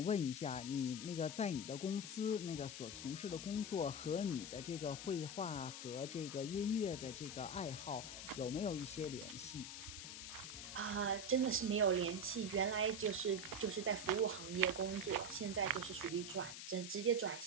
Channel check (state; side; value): noise; left; hiss, 8 dB below the sound